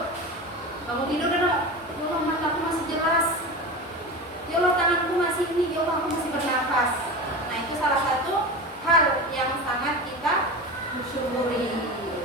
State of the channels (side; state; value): both; normal; correlation 0.27